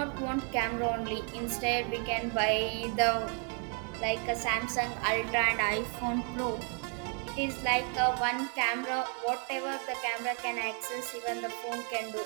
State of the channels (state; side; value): quieter; left; 34.6 dB